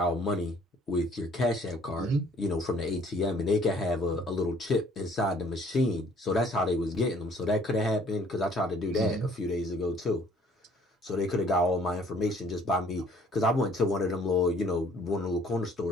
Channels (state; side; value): normal; both; correlation 0.58